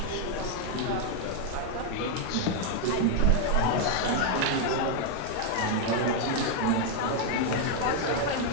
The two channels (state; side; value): different; both; correlation 0.00